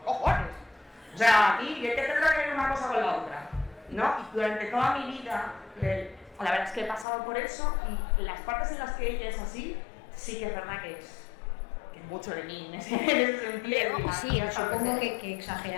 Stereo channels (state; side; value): drops out; right; at 7.1 s